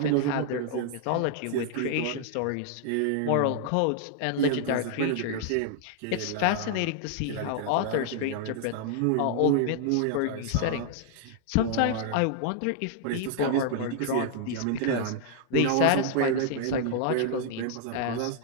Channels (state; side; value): different; both; correlation -0.01